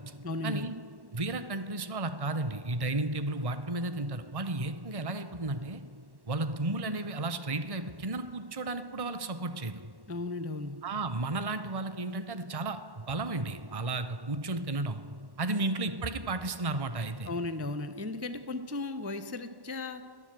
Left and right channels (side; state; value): left; late; 1.1 ms